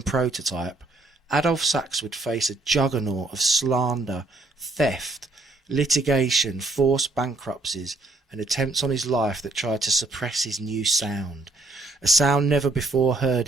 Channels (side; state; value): left; quieter; 3.0 dB